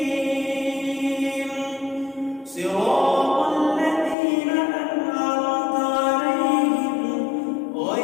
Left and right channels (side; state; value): right; drops out; at 4.2 s